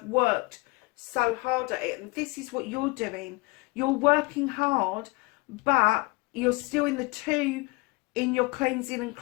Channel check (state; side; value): quieter; right; 25.6 dB